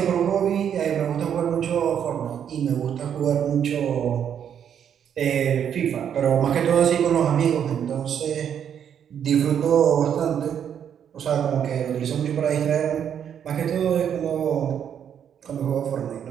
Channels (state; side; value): quieter; left; 8.7 dB